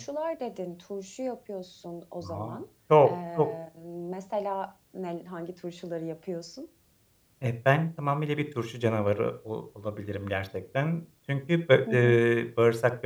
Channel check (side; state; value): both; identical; correlation 1.00